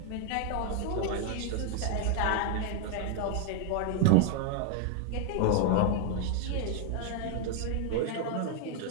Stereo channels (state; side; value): different; both; correlation 0.00